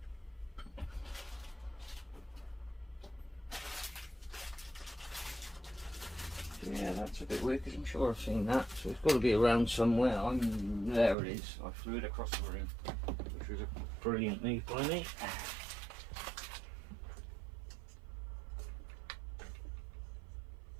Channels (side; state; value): left; drops out; at 11.2 s